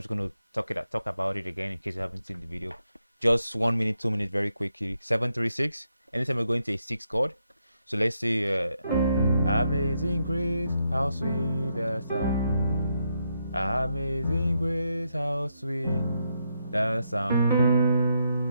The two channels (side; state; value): both; inverted; correlation -0.80